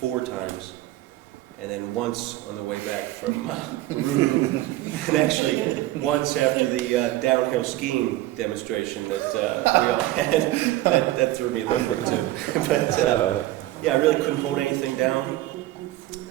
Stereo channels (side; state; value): left; quieter; 16.2 dB